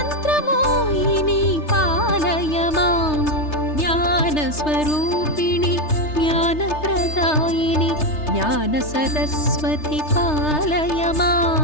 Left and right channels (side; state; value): right; late; 3.3 ms